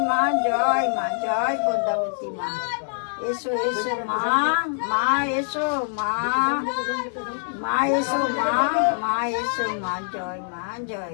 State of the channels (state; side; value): silent; right; digital silence